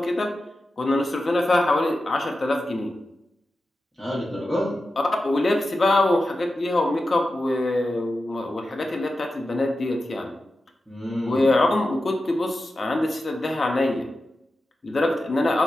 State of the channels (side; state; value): both; normal; correlation 0.92